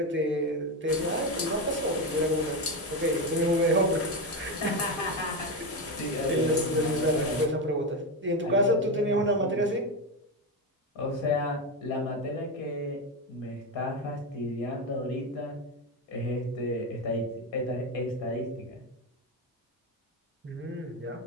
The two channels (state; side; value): normal; both; correlation 0.13